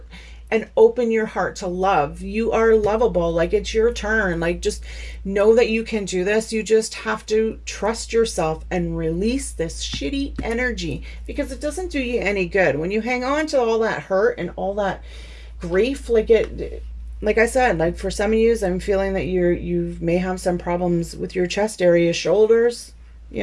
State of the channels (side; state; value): both; identical; correlation 1.00